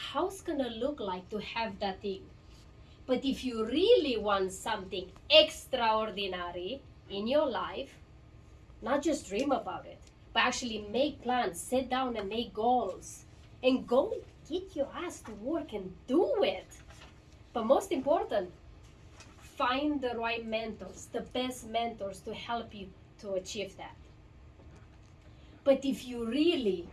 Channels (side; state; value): both; identical; correlation 1.00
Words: it's gonna look like to have that thing. But if you really want something extraordinary in your life, not just dream about it, but actually make plans, sit down and make goals, and go get your ass to work and do it. But most important, find the right mentors, the best mentors to help you to achieve that. But if you really